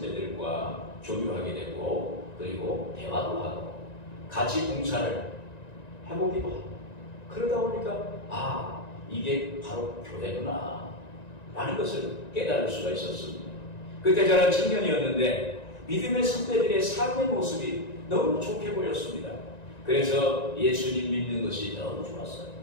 교류하게 되고 그리고 대화도 하고 같이 봉사를 해보기도 하고 그러다 보니까 이게 바로 교회구나 라는 것을 깨달을 수가 있었습니다. 그때 저는 청년이었는데 믿음의 선배들의 삶의 모습이 너무 좋게 보였습니다. 그래서 예수님 믿는 것이 너무 좋았어요.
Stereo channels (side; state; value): right; late; 1.9 ms